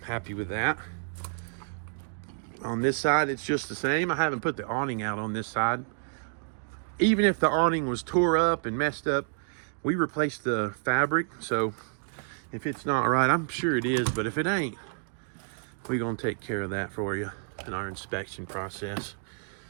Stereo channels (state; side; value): silent; left; digital silence